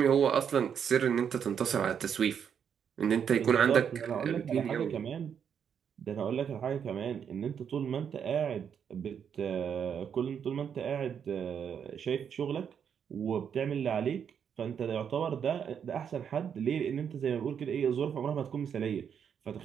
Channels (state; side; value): quieter; left; 7.8 dB